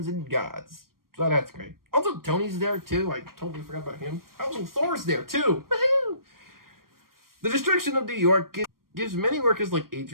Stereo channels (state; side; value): late; left; 0.92 ms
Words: and gods. So that's great. Also, Tony's there too. I totally forgot about him. Also, Thor's there too. Woohoo! The destruction of New York gives many workers like